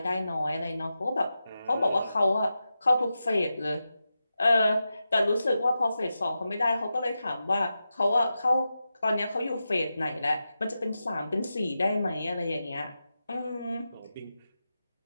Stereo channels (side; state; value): both; inverted; correlation -0.90